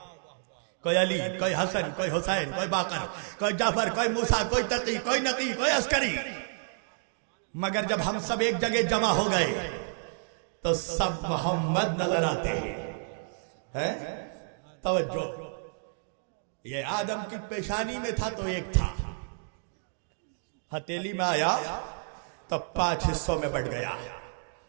کوئی علی، کوئی حسن، کوئی حسین، کوئی باقر، کوئی جعفر، کوئی موسیٰ، کوئی تقی، کوئی نقی، کوئی عسکری، مگر جب ہم سب ایک جگہ جمع ہو گئے تو سب محمد نظر آتے ہیں۔ توجہ، یہ آدم کی پیشانی میں تھا تو ایک تھا، ہتھیلی میں آیا تو 5 حصوں میں بٹ گیا۔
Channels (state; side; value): silent; left; digital silence